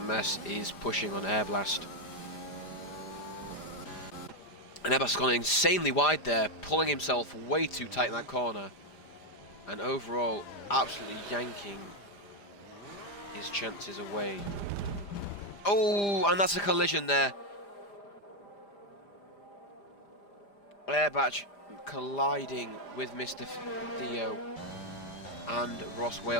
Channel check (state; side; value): late; right; 5.0 ms